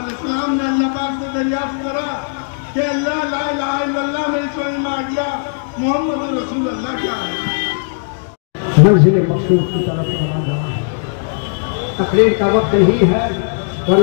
अलैहिस्सलाम ने अल्लाह पाक से दरियाफ्त करा कि अल्लाह ला इलाहा इल्लल्लाह मेरी समझ में आ गया, मुहम्मदुर रसूलुल्लाह क्या है। मंजिल मकसूद की तरफ रवाना है। तकरीर का वक्त नहीं है,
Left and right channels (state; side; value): silent; right; digital silence